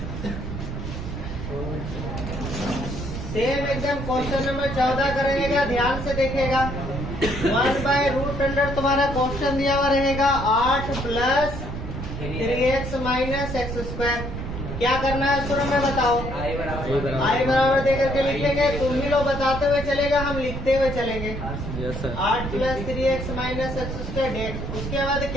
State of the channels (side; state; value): right; noise; rumble, 6 dB below the sound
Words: सेम एकदम क्वेश्चन नंबर 14 का रहेगा, ध्यान से देखेगा। 1/√, तुम्हारा क्वेश्चन दिया हुआ रहेगा 8 प्लस 3x माइनस x²। क्या करना है शुरू में बताओ? आई बराबर देकर के लिखेंगे। तुम ही लोग बताते हुए चलेगा, हम लिखते हुए चलेंगे। 8 plus 3x minus x² dx। उसके बाद